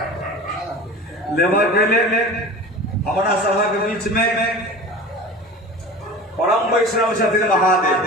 लेबर के ले हमारा सभा के बीच में परम वैष्णव छथिन महादेव।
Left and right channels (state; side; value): normal; both; correlation 0.36